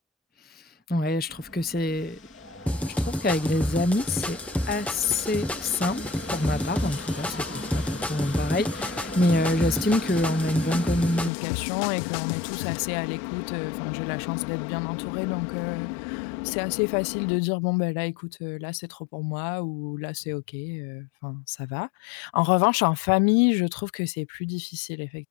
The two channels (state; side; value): drops out; right; at 11.3 s